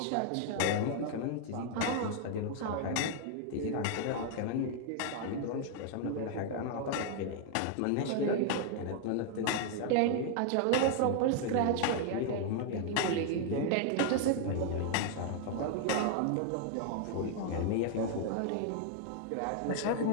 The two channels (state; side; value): different; both; correlation 0.00